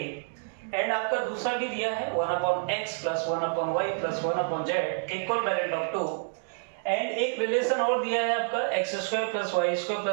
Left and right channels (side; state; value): left; silent; digital silence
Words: and आपका दूसरा भी दिया है 1/x plus 1/y plus 1/z equivalent of 2 and एक रिलेशन और दिया है आपका x² plus y²